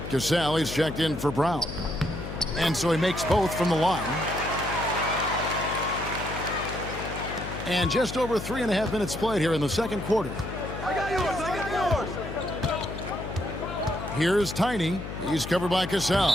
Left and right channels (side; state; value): left; noise; hum, 8 dB below the sound